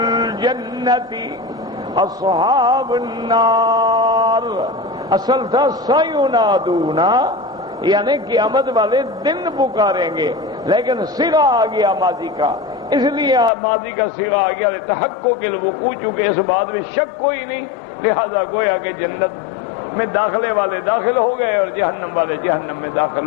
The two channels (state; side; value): drops out; right; at 13.5 s